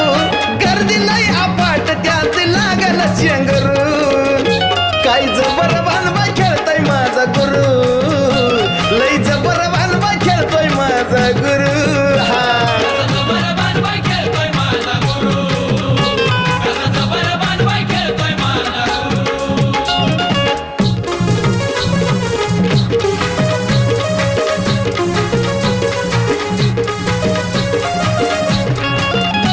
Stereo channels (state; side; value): identical; both; correlation 1.00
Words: गर्दी लय अपाट त्यात लागल चेंगरू काय जबर बांधवा खेळतोय माझा गुरु लय जबर बांधवा खेळतोय माझा गुरु हा